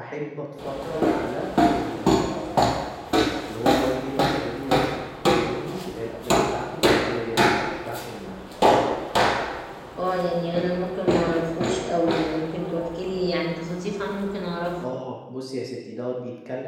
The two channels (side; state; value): both; identical; correlation 1.00